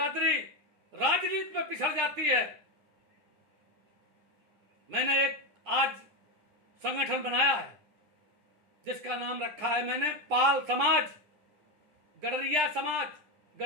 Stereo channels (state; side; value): late; left; 9.9 ms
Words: राजनीति में पिछड़ जाती है। मैंने एक आज संगठन बनाया है जिसका नाम रखा है मैंने पाल समाज, गडरिया समाज।